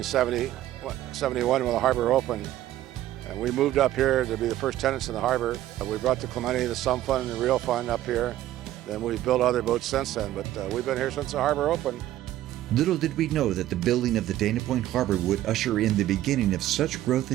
when the harbor opened, and we moved up here to be the first tenants in the harbor. We brought the Clemente, the Sum Fund, and the Real Fund up here. Then we've built other boats since then, but we've been here since the harbor opened. Little did we know that the building of the Dana Point Harbor would usher in the beginning of such growth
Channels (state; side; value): quieter; left; 13.8 dB